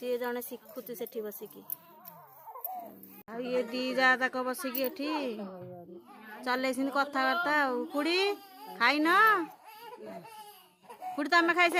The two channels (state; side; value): identical; both; correlation 1.00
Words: जने शिखुची सेठी बसिकी आ ये दी जा तक बसिकी एठी चलैछिन कथाबार्ता आउ खुड़ी खाई न खुड़ी तमे खाई